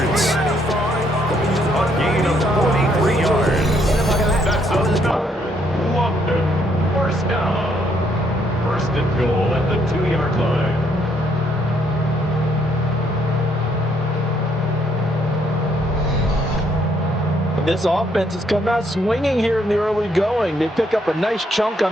A gain of 43 yards. That's enough. London. First down. First and goal at the 2-yard line. This offense has come out swinging here in the early going. They pick up a nice chunk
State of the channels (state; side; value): normal; both; correlation 0.71